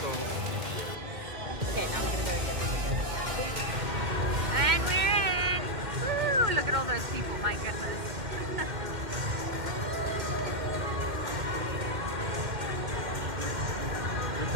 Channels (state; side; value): late; left; 2.1 ms